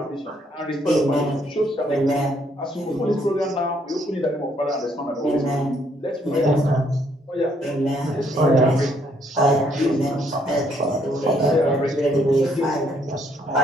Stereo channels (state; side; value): normal; both; correlation 0.69